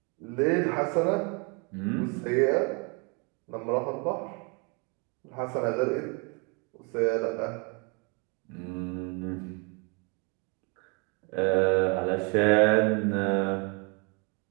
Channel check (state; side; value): quieter; left; 32.8 dB